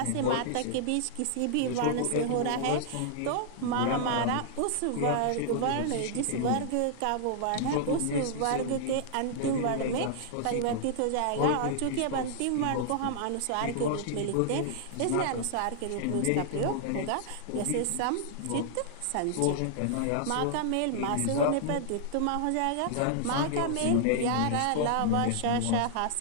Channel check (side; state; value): both; different; correlation -0.01